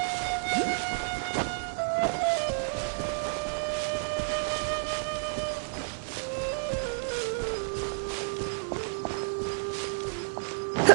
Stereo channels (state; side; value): silent; left; digital silence